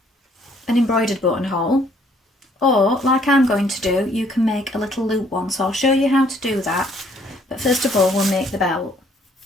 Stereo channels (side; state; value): both; normal; correlation 0.63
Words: an embroidered buttonhole, or like I'm going to do, you can make a little loop one. So I'll show you how to do that, but first of all we'll make the belt.